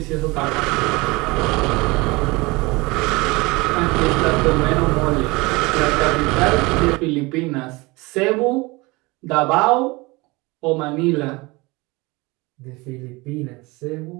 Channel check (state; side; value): quieter; left; 23.8 dB